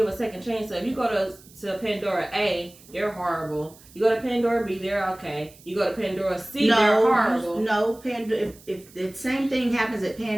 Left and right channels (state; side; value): noise; right; hiss, 24 dB below the sound